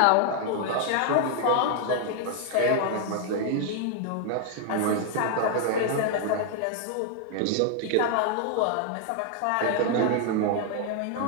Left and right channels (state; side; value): different; both; correlation 0.00